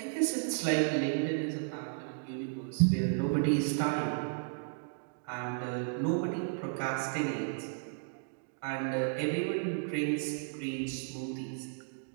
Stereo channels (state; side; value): silent; left; digital silence